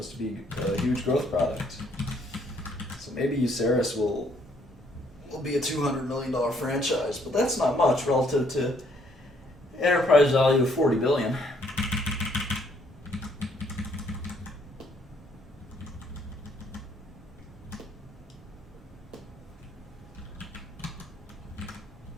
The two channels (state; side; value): normal; both; correlation 0.67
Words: to be a huge growth product. So maybe Uceris will be a $200 million franchise, but that's not much relative to enterprise value of $40 billion.